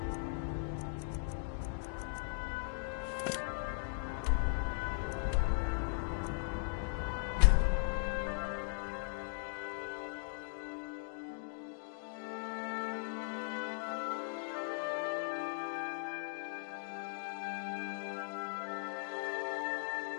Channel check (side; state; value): right; silent; digital silence